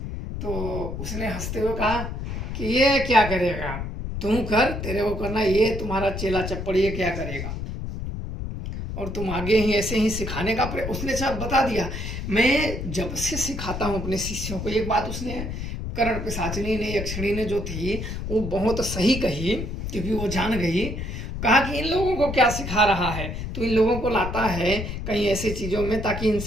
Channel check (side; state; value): left; noise; rumble, 5 dB below the sound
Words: तो उसने हंसते हुए कहा कि ये क्या करेगा, तुम कर, तेरे को करना, ये तुम्हारा चेला चप्पड़ ये क्या करेगा, और तुम आगे ही ऐसे ही सिखाने का उसने सब बता दिया। मैं जब से सिखाता हूँ अपने शिष्यों को, एक बात उसने कर्ण पिशाचिनी ने, यक्षिणी ने जो थी वो बहुत सही कही, क्योंकि वो जान गई। कहा कि इन लोगों को क्या सिखा रहा है, तो इन लोगों को लाता है कहीं ऐसी चीज़ों में ताकि